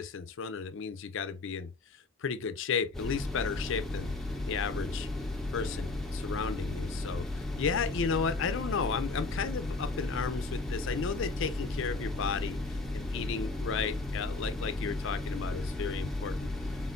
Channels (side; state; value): right; quieter; 3.7 dB